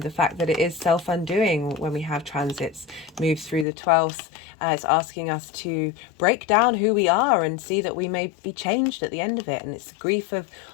fact that it is self-undoing when we have transits move through the 12th. It's asking us to break down who we are and see that we may be changed at the end of it. And it's grief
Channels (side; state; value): right; drops out; at 3.7 s